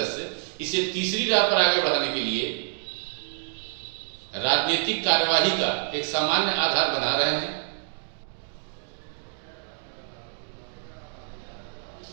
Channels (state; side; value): silent; left; digital silence